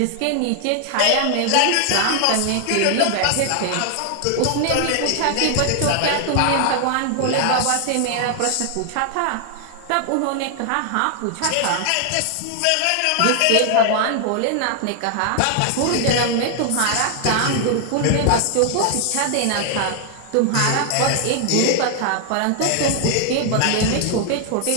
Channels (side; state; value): both; different; correlation 0.00